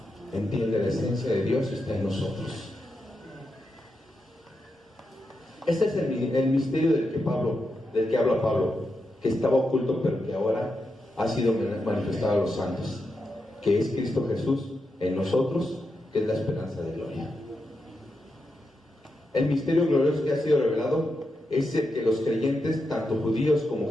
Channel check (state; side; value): normal; both; correlation 0.86